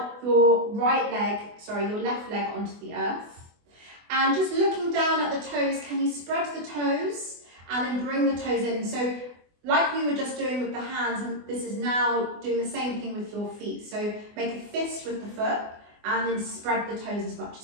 your your left leg onto the earth. And just looking down at the toes, can you spread the toes and then bring the toes in? So like we were just doing with the hands, and this is now doing the same thing with your feet. So make a fist with the foot and then spread the toes as much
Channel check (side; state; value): left; late; 24 ms